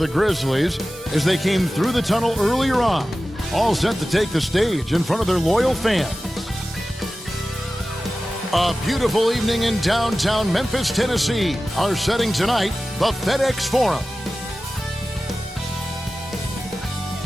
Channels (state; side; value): normal; both; correlation 0.95